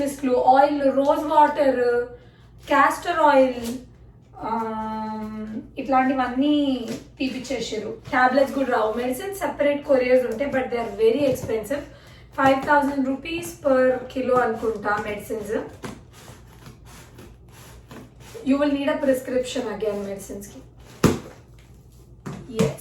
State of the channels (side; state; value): both; identical; correlation 1.00